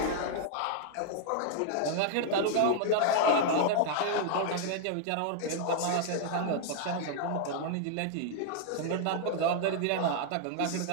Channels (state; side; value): different; both; correlation 0.00